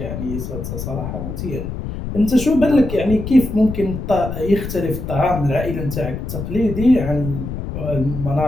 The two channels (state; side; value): noise; left; rumble, 6 dB below the sound